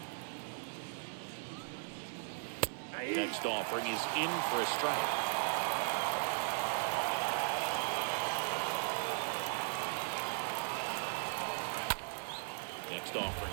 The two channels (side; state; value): left; silent; digital silence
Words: Next offering is in for a strike. Next offering